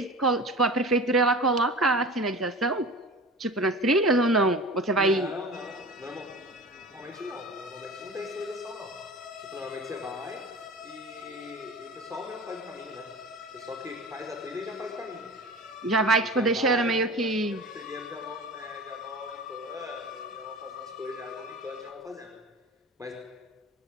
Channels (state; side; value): normal; both; correlation 0.35